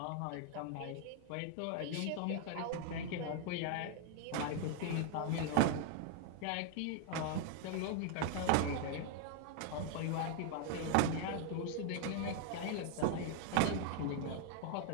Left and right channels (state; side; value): different; both; correlation 0.00